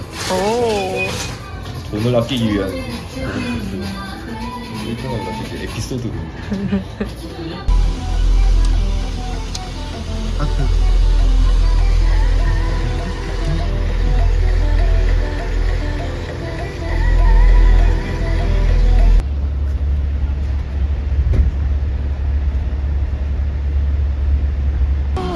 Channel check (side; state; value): both; identical; correlation 1.00